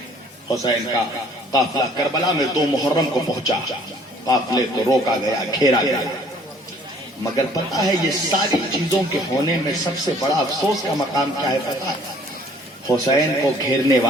حسین کا قافلہ کربلا میں 2 محرم کو پہنچا. قافلے کو روکا گیا، گھیرا گیا. مگر پتہ ہے یہ ساری چیزوں کے ہونے میں سب سے بڑا افسوس کا مقام کیا ہے پتہ ہے؟ حسین کو گھیرنے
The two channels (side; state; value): both; normal; correlation 0.57